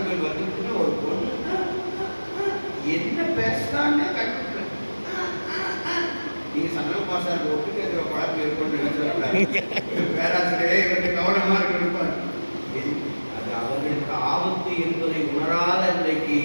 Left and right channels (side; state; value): both; inverted; correlation -1.00